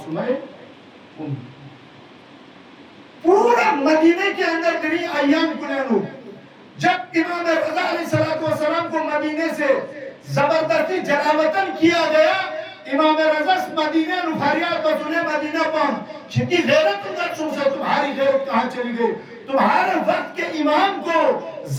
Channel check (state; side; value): identical; both; correlation 1.00